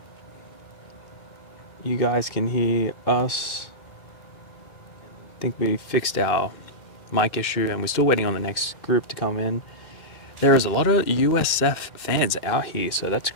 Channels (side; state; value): right; late; 2.1 ms